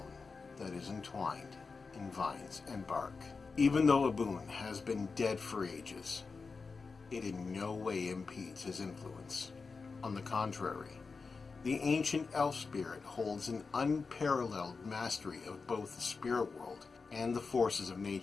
that is entwined in vines and bark. Even though Abun has been dead for ages, it in no way impedes his influence. On the contrary, the ancient elf spirit holds an unparalleled mastery of both the spirit world and the forces of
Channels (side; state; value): right; quieter; 4.6 dB